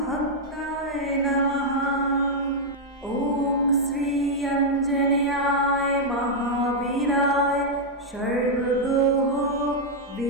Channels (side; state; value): both; normal; correlation -0.03